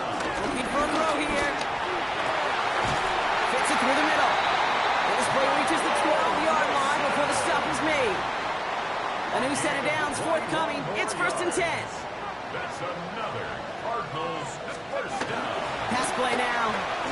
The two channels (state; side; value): identical; both; correlation 1.00